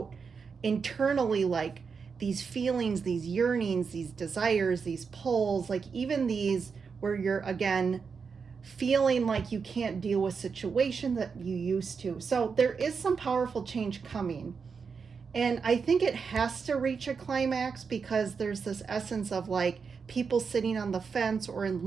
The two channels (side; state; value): left; quieter; 5.6 dB